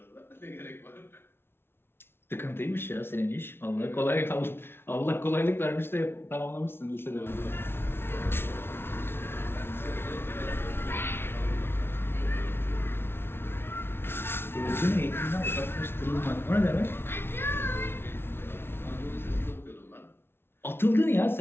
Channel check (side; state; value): right; late; 0.11 ms